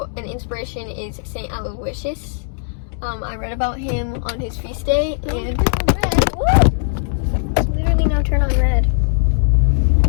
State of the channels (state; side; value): silent; right; digital silence